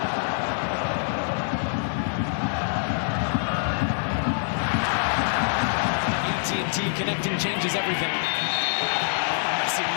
Connecting changes everything. Messi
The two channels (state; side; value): silent; right; 62 dB below the other